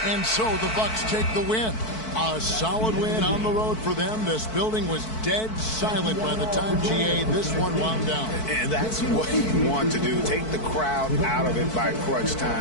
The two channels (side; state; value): right; late; 4.6 ms